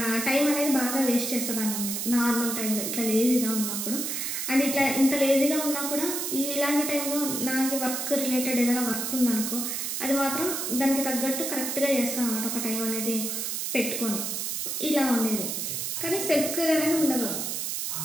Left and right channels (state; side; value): noise; right; hiss, 2 dB below the sound